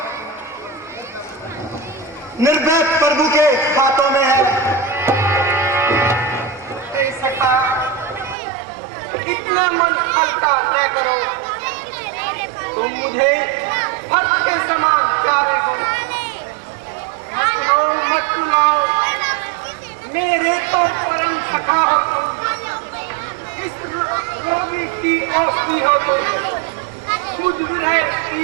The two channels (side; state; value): left; drops out; at 8.3 s